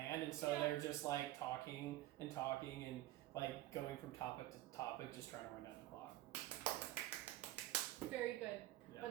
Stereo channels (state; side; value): quieter; left; 15.5 dB